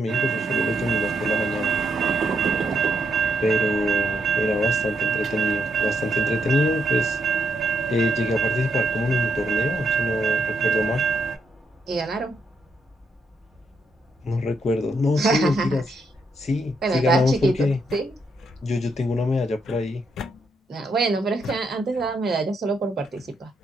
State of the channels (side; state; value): both; normal; correlation 0.78